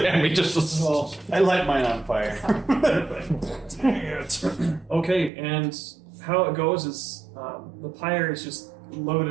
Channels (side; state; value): left; drops out; at 5.3 s